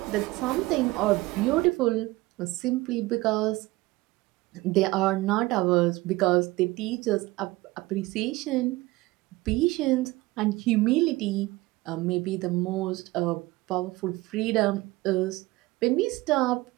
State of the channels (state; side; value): quieter; left; 20.2 dB